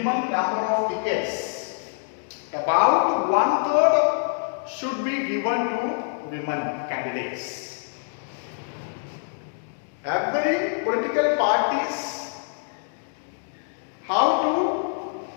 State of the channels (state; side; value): silent; right; digital silence